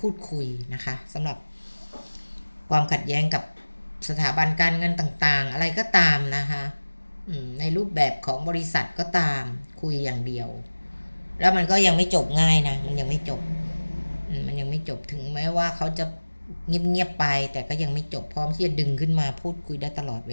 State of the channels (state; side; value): inverted; both; correlation -1.00